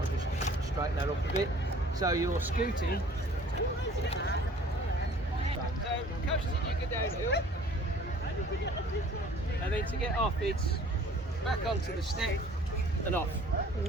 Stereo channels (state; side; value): normal; both; correlation 0.51